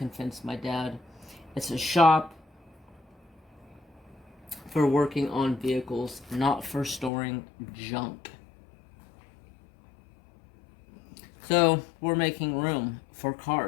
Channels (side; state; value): right; drops out; at 7.1 s